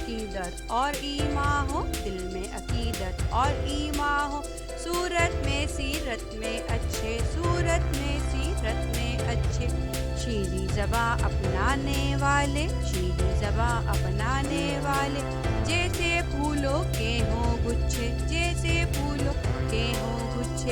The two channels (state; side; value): identical; both; correlation 1.00